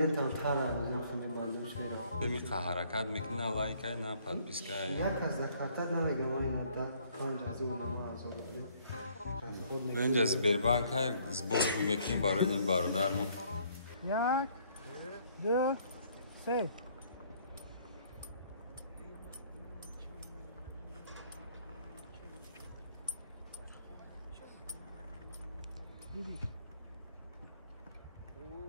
میخواه حرکت میکنه لایک های نه پادپیسک های یک از دکارتا نمیگم این مدت 5 از اون ما از اون اینجا از بربانک های زبور میکنیم برای این برادرمون 1 2 3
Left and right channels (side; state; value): both; inverted; correlation -0.63